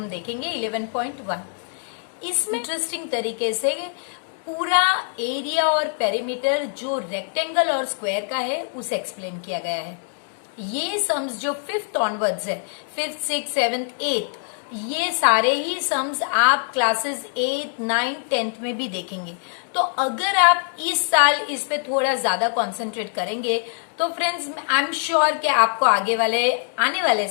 देखेंगे 11.1। इसमें इंटरेस्टिंग तरीके से पूरा एरिया और पेरीमीटर जो रेक्टेंगल और स्क्वायर का है उसे एक्सप्लेन किया गया है। ये सम्स जो 5th ऑनवर्ड्स है, 5th, 6th, 7th, 8th, ये सारे ही सम्स आप क्लासेस 8, 9, 10th में भी देखेंगे। तो अगर आप इस साल इस पे थोड़ा ज्यादा कंसंट्रेट करेंगे तो फ्रेंड्स आई एम श्योर कि आपको आने वाले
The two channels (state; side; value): silent; right; digital silence